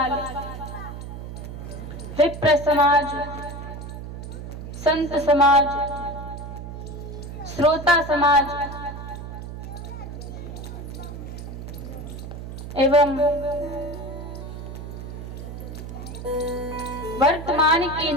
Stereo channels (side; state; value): right; noise; hum, 9 dB below the sound